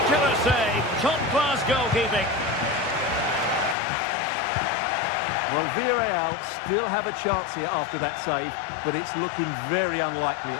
save. Top-class goalkeeping. Well, Villarreal still have a chance here after that save, but it's looking very unlikely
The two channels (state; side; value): drops out; right; at 3.8 s